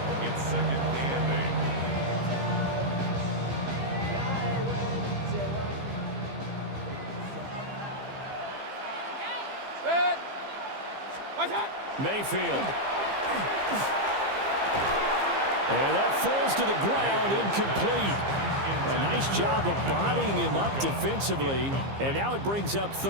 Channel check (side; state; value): left; late; 15 ms